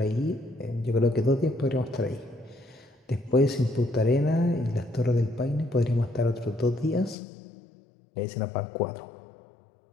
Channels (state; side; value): drops out; right; at 7.2 s